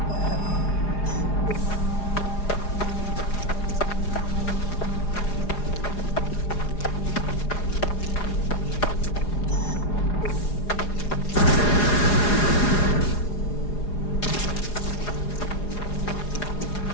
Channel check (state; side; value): late; right; 4.9 ms